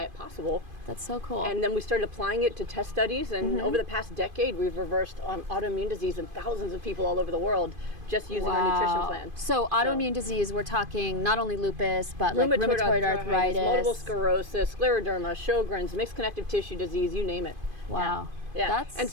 possible. That's so cool. And then we started applying it to test studies, and over the past decade, we've reversed autoimmune disease in thousands of people all over the world just using our nutrition plan. So autoimmune disease, we're talking not only lupus, but like rheumatoid arthritis, multiple sclerosis, scleroderma, Sjogren's, mixed connective tissue disease, you name it. Wow. Yeah. That's and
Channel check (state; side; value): late; left; 2.5 ms